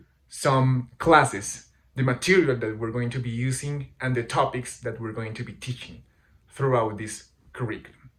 some classes, the material that we're going to be using, and the topics that we're going to be teaching throughout this curriculum.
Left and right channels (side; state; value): both; identical; correlation 1.00